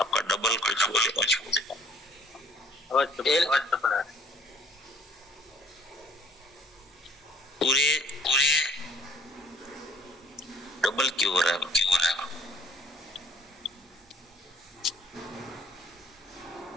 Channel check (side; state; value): both; normal; correlation 0.58